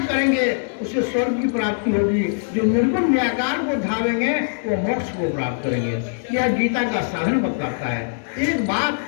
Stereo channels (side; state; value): right; silent; digital silence